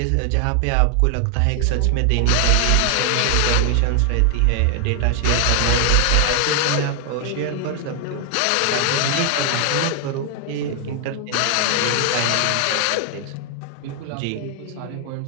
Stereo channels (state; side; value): different; both; correlation 0.00